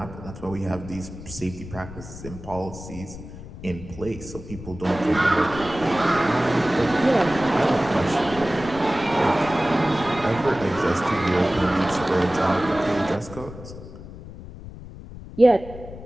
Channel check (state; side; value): noise; left; rumble, 14 dB below the sound